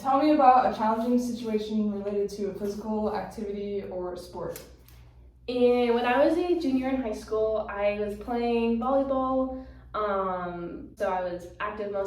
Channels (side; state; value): both; identical; correlation 1.00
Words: Tell me about a challenging situation related to a physical activity or sport. And when I was a junior in high school, I was playing volleyball. So I was active